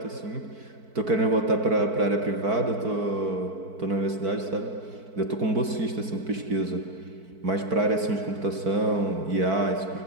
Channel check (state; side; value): late; left; 4.5 ms